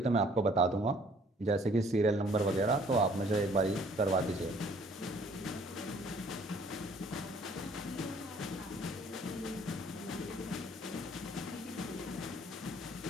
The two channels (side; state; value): both; normal; correlation 0.58